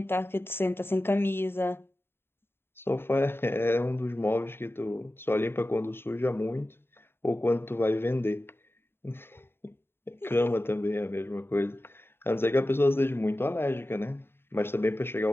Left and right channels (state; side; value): late; right; 0.11 ms